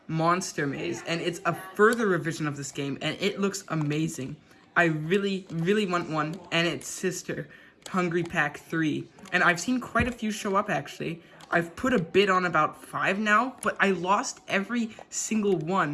Monster Maze, and it's a further revision of this game, and it looks amazing. I really, really want one, and its sister, Hungry Pack 3. And I've seen quite a few show up, actually. I've put a bid on about 5 now, but I lost every single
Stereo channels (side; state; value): both; identical; correlation 1.00